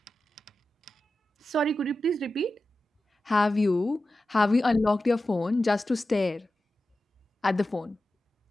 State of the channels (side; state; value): both; normal; correlation 0.93